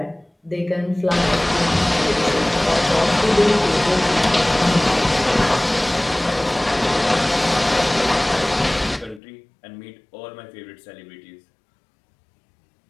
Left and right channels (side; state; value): right; drops out; at 9.2 s